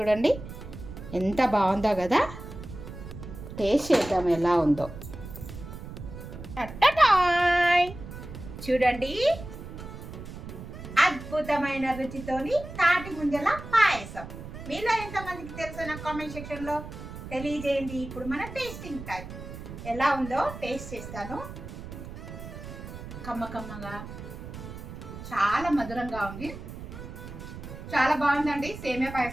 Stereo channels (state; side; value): noise; right; rumble, 11 dB below the sound